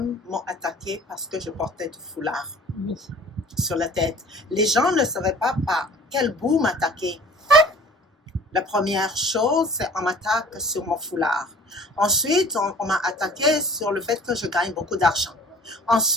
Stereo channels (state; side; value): normal; both; correlation 0.48